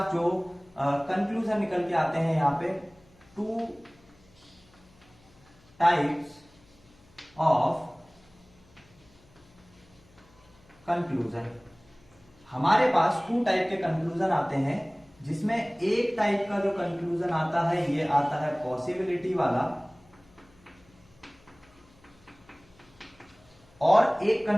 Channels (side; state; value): left; noise; hum, 29 dB below the sound